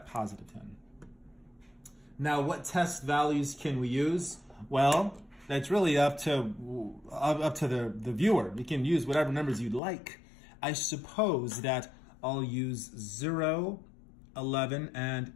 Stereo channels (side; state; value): right; drops out; at 9.8 s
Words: positive 10. Now, what test values can we use? Well, that's really up to the viewer. You can use whatever numbers you'd like. I suppose that I'll use 0, 11, and